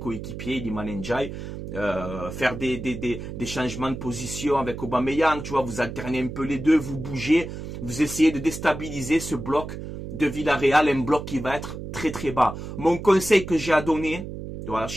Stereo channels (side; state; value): right; noise; hum, 8 dB below the sound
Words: Iliman Ndiaye. Faire des changements de position avec Aubameyang. Tu vois, vous alternez un peu les deux, vous bougez. Vous essayez de déstabiliser ce bloc de Villarreal. Un bloc qui va être très très bas. Mon conseil que j'ai à donner, voilà, je